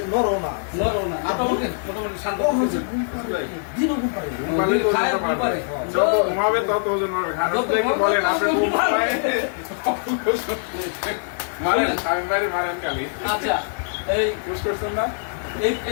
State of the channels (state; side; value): silent; right; digital silence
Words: নরম না। নরম না। মোটামুটি শান্ত হচ্ছে। দিনও ঘুম পারে। খায় ঘুম পারে। যত ঘুমাবে তত ওজন হবে। খারাপ দেখে বলেন আপনি ঘুম পায়। মারেন, আমি বাড়ি মারেন খালি। আচ্ছা, এই পুশ করছেন না?